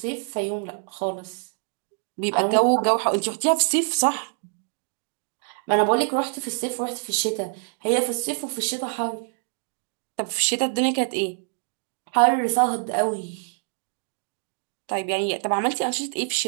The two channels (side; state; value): left; silent; digital silence